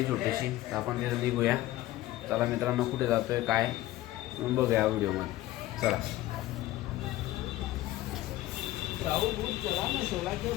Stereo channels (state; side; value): quieter; right; 15.8 dB